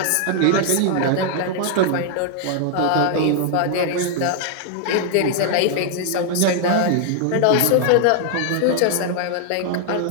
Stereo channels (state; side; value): different; both; correlation 0.00